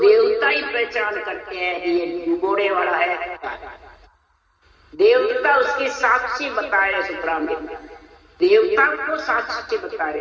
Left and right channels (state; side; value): identical; both; correlation 1.00